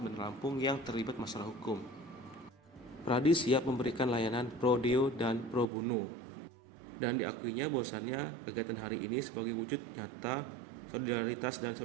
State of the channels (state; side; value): drops out; left; at 5.7 s